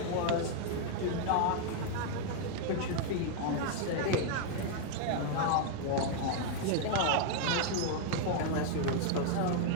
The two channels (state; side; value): different; both; correlation 0.00